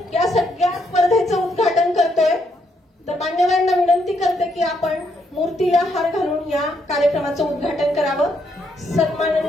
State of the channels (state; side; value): normal; both; correlation 0.75